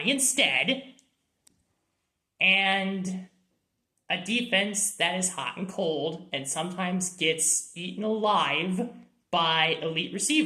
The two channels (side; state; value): both; identical; correlation 1.00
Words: instead, and a defense that is hot and cold and sometimes gets eaten alive by elite